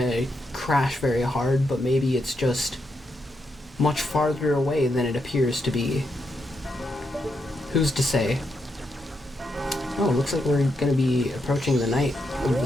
crash very hard, but maybe it's just much farther away than it appears to be. Who's to say? Oh, it looks like we're gonna be approaching the night of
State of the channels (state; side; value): normal; both; correlation 0.82